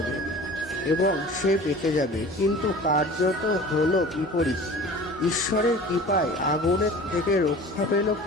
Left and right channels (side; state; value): both; normal; correlation 0.41